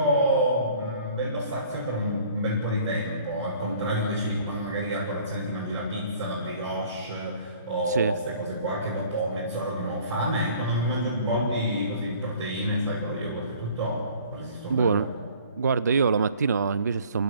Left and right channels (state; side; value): inverted; both; correlation -0.52